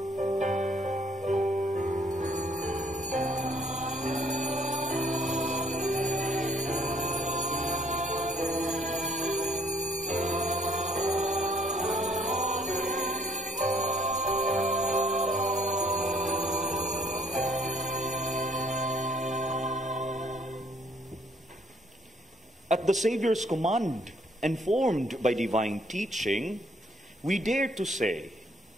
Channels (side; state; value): both; normal; correlation 0.64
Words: At the Savior's command, and formed by divine teaching, we dare to say,